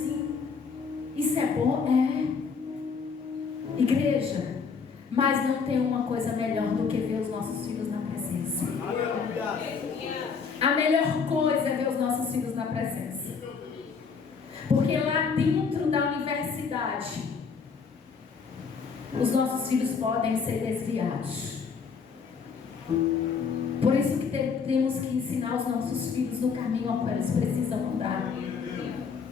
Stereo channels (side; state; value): right; quieter; 5.7 dB